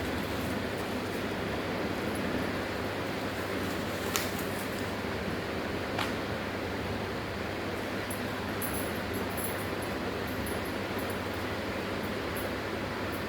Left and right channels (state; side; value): identical; both; correlation 1.00